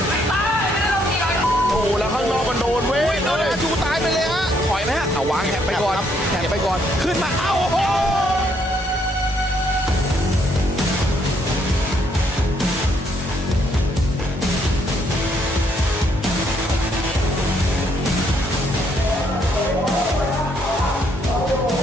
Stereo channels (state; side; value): normal; both; correlation 0.71